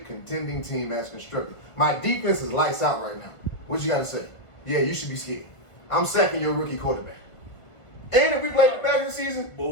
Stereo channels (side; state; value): right; late; 1.5 ms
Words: contending team as constructed. My defense is lights out right now. What you gotta say? Yeah, you should be scared. I'm sacking your rookie quarterback. And if we play the back of the season,